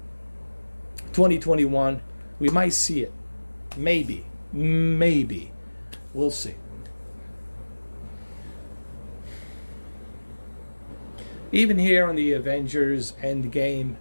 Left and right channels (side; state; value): both; inverted; correlation -1.00